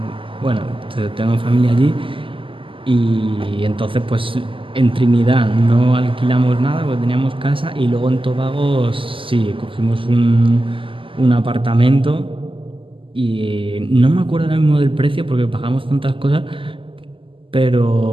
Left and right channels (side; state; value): left; late; 0.25 ms